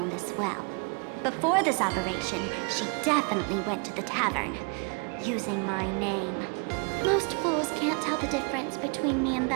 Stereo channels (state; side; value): quieter; left; 34.9 dB